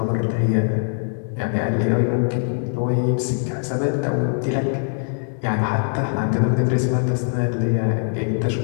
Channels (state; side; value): silent; right; digital silence